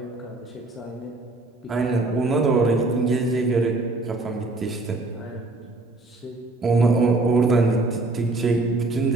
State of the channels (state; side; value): quieter; left; 3.1 dB